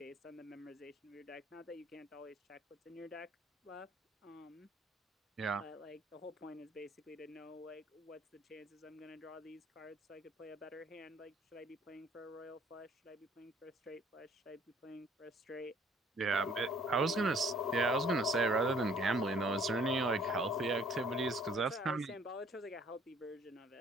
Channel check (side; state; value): both; normal; correlation 0.59